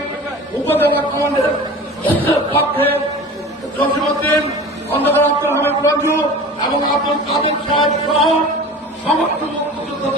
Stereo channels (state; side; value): normal; both; correlation 0.37